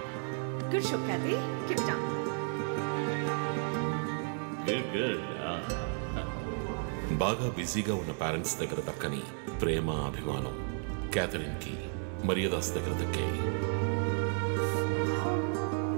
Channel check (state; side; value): silent; left; 56 dB below the other